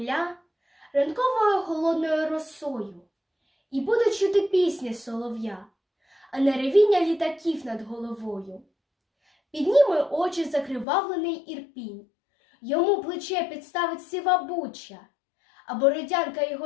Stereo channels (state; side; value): drops out; right; at 10.9 s